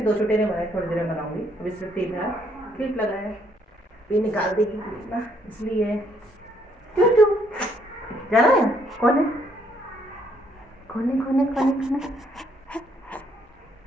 2 छोटे नहीं बनाए, थोड़ी देर में बनाऊंगी। अभी सिर्फ 3 क्लिप लगाया है, ये निकाल देगी क्लिप ना, इसलिए क्यों क्यों जाना है। कौन है कौन है कौन है कौन है कौन है।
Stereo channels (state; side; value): normal; both; correlation 0.69